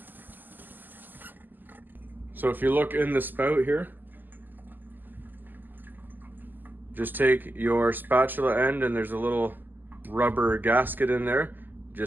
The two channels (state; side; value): late; left; 0.088 ms